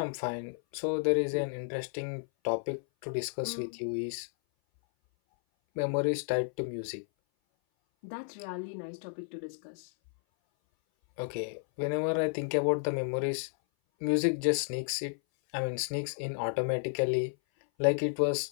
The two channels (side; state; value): right; silent; 56 dB below the other